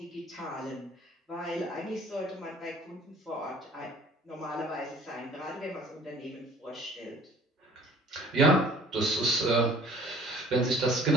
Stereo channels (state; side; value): normal; both; correlation 0.52